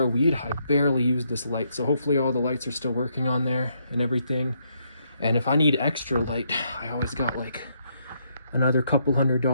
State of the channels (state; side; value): inverted; both; correlation -0.75